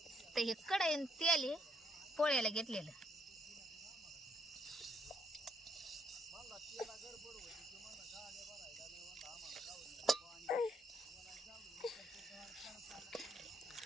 तर हे कढई तेल हे पोळ्याला घेतलेलं.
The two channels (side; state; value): both; normal; correlation 0.71